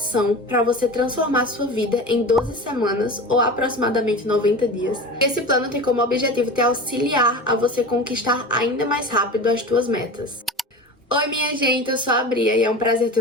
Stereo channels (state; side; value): normal; both; correlation 0.32